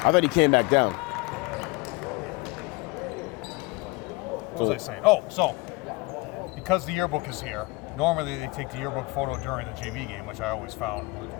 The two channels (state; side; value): quieter; right; 24.4 dB